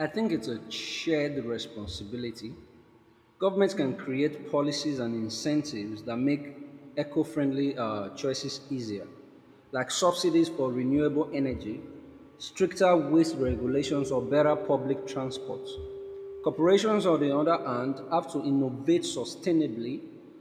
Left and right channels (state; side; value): identical; both; correlation 1.00